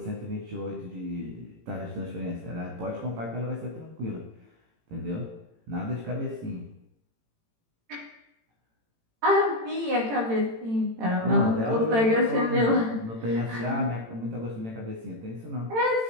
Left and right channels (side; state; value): left; late; 18 ms